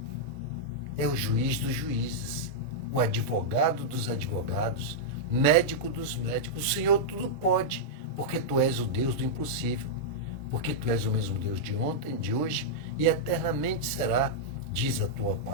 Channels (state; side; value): normal; both; correlation -0.06